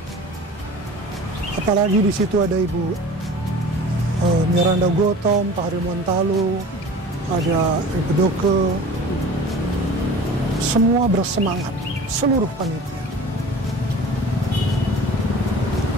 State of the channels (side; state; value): both; normal; correlation 0.41